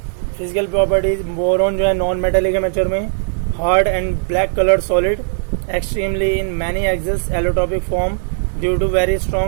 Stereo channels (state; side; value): silent; left; 55 dB below the other